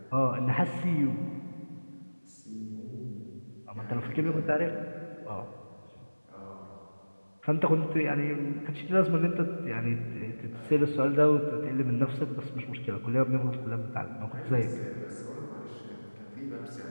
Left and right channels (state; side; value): inverted; both; correlation -1.00